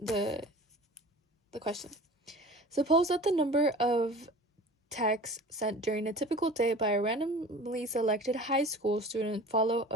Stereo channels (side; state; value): both; normal; correlation 0.40